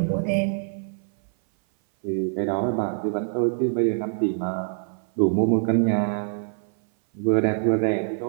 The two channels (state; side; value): silent; left; 58 dB below the other